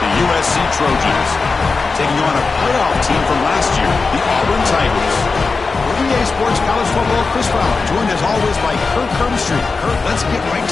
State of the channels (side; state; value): right; quieter; 4.3 dB